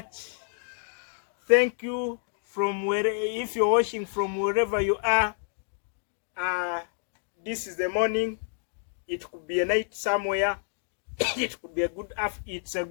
Thank you from if you're watching from wherever you are. This is the morning. It could be a night somewhere. It could be a good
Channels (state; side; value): silent; right; 59 dB below the other